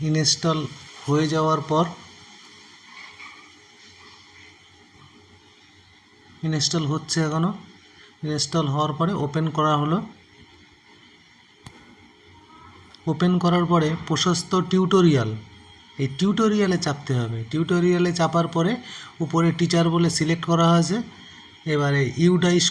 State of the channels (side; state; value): both; identical; correlation 1.00